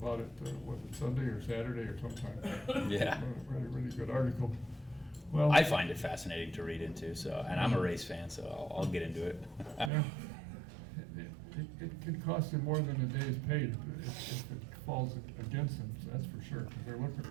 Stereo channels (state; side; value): drops out; left; at 9.9 s